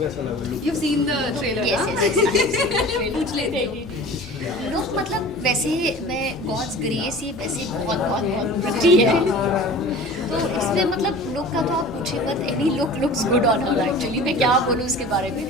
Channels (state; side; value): normal; both; correlation 0.41